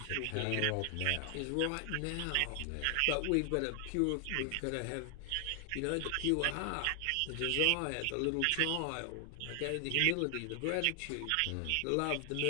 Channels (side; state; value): both; different; correlation 0.00